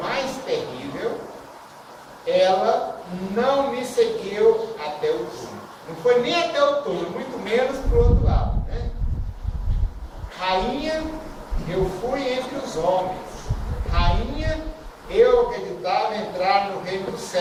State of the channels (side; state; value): both; identical; correlation 1.00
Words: mais terrível, ela não me seguiu até o túmulo. Não foi nem até o túmulo, muito menos para o outro lado, né? Rainha, eu fui entre os homens. Rainha, eu acreditava entrar no reino dos